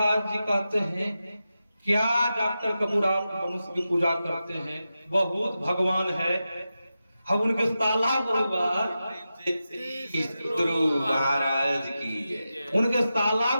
जी कहते हैं क्या डॉक्टर कपूर आप मनुष्य की पूजा करते हैं, बहुत भगवान है। हम उनके साला परिवार गुरु महाराज की जय। उनके साला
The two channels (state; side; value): inverted; both; correlation -0.91